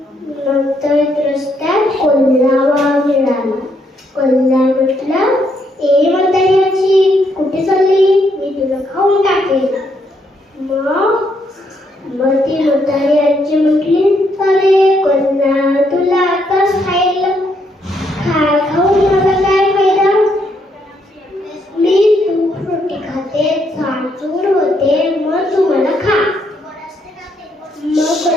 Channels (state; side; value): normal; both; correlation 0.74